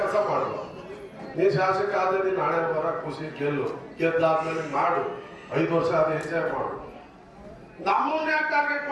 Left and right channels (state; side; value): identical; both; correlation 1.00